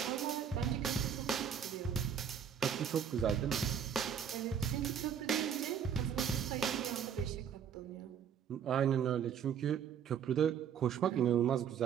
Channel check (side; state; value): left; quieter; 8.0 dB